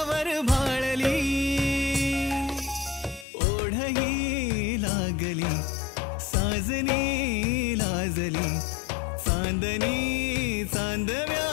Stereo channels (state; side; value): drops out; right; at 3.2 s